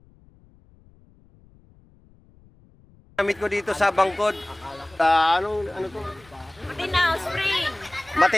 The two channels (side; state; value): left; noise; rumble, 28 dB below the sound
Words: Gamit ko dito sa Bangkod. Ano to? Matinaw Spring.